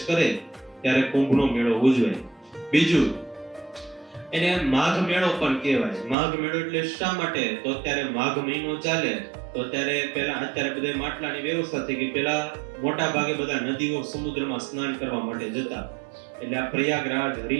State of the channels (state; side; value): drops out; left; at 6.2 s